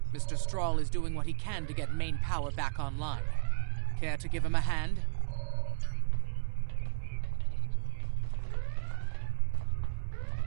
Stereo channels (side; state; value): left; silent; 56 dB below the other